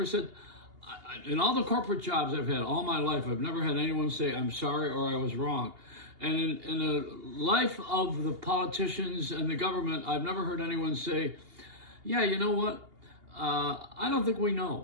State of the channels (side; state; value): left; late; 2.8 ms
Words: said, in all the corporate jobs I've had all my life, I've never had anyone say, I'm sorry or I was wrong. And in the life of the politicians and the government, I've never heard anyone say, yeah, you know what? I don't think we